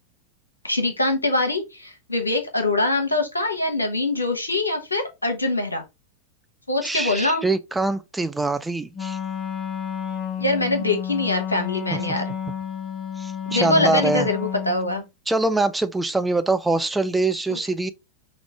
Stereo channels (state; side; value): normal; both; correlation -0.02